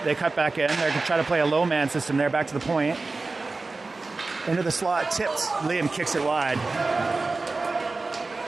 They cut back in. They're going to try to play a low man system there, back to the point. Into the slot, tipped. Liam kicks it wide.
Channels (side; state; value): left; quieter; 3.6 dB